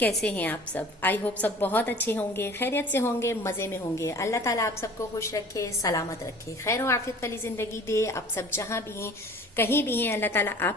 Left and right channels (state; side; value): normal; both; correlation 0.46